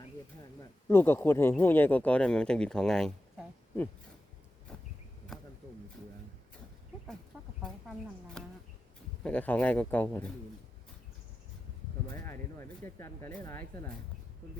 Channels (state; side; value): normal; both; correlation 0.92